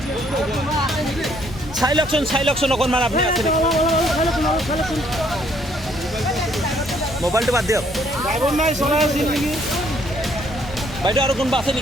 চাই লওকচোন অকণমান আপুনি আছে নেকি? মোবাইলটো বাদ দিয়ক। বাইদেউ আৰু কোনোবা আছে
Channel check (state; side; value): normal; both; correlation 0.66